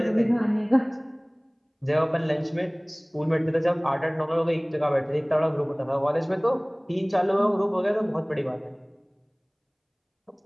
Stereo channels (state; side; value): identical; both; correlation 1.00